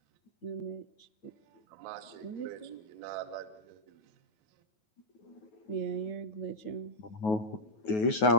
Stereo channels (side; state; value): right; late; 9.4 ms